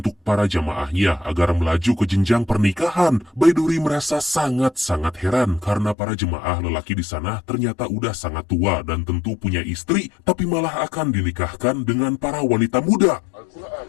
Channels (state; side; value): drops out; right; at 6.0 s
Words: para jamaahnya agar melaju ke jenjang pernikahan. Baiduri merasa sangat-sangat heran karena para jemaah lelaki di sana ternyata udah sangat tua dan tentu punya istri, tapi malah akan dinikahkan dengan para wanita muda.